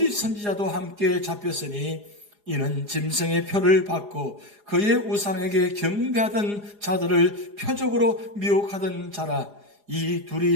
선지자도 함께 잡혔으니 이는 짐승의 표를 받고 그의 우상에게 경배하던 자들을 표적으로 미혹하던 자라. 이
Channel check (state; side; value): late; left; 4.9 ms